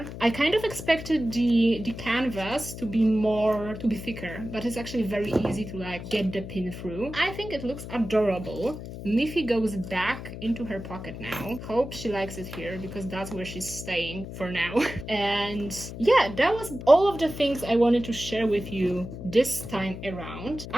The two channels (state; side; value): noise; left; hum, 10 dB below the sound